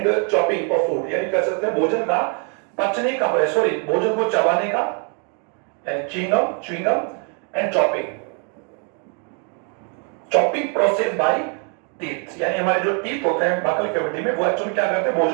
chopping of food, यानी कह सकते हैं भोजन का पचने का, सॉरी भोजन को चबाने का, यानी chewing and chopping process by teeth, यानी हमारे जो टीथ होते हैं बकल कैविटी में वो एक्चुअली क्या करते हैं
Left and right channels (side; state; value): left; quieter; 39.3 dB